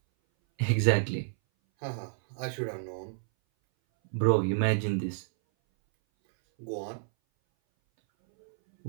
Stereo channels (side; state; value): left; silent; 58 dB below the other